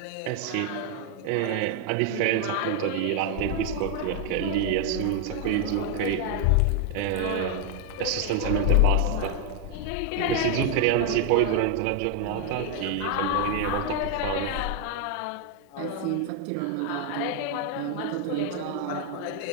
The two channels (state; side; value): different; both; correlation 0.01